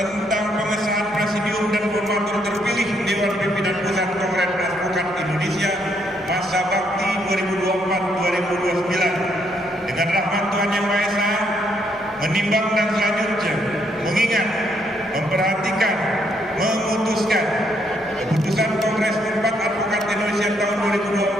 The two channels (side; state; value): both; normal; correlation 0.73